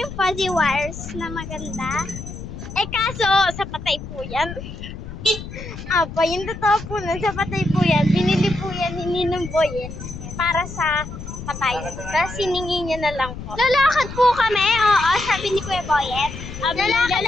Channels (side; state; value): left; noise; rumble, 10 dB below the sound